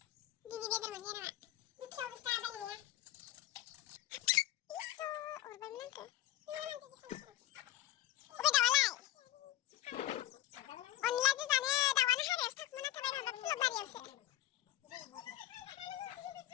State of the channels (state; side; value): quieter; right; 15.0 dB